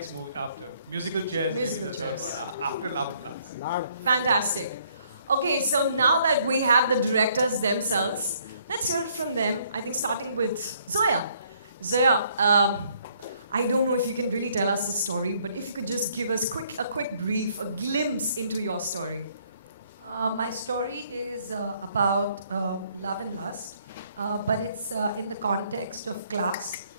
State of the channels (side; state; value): both; inverted; correlation -0.66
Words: after. Musical chairs, Musical maybe the chairs. third one. After Love and Lust. fantastic. Okay, so now that we have the directors themselves, let's hear it from them. I think starting with Zoya. Zoya, I don't know if you can really tell us the story, but if you could just give us a quick brief, a glimpse into your story. My story is about love and lust, but it's in the context of class